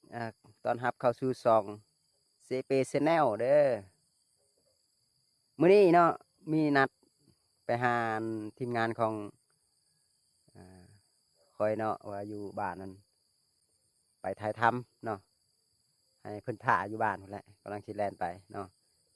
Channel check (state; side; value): identical; both; correlation 1.00